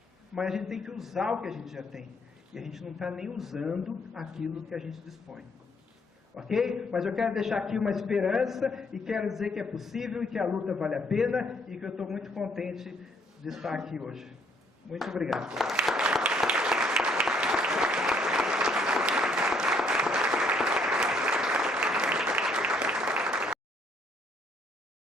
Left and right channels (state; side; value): normal; both; correlation 0.67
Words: mas a gente tem que usar o que a gente já tem. E a gente não está nem usando aquilo que a gente dispõe. Ok? Mas eu quero deixar aqui uma esperança e quero dizer que é possível e que a luta vale a pena e que eu estou muito contente de estar aqui hoje. Muito obrigado.